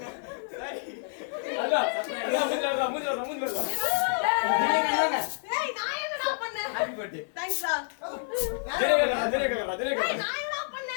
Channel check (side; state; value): right; silent; 59 dB below the other